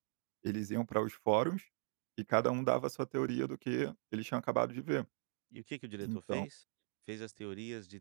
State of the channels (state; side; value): silent; left; 51 dB below the other